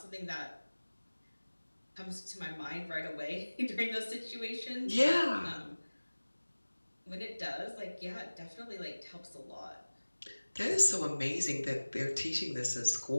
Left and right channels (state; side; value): inverted; both; correlation -1.00